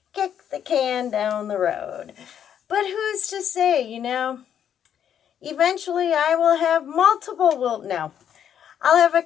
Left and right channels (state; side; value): quieter; right; 9.1 dB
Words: Kick the can down the road. But who's to say, you know? Eventually I will have I'll have